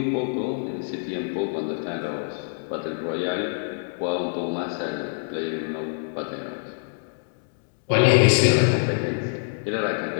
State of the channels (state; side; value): silent; right; digital silence